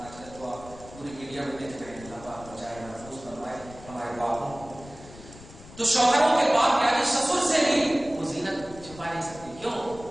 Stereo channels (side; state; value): left; noise; rumble, 18 dB below the sound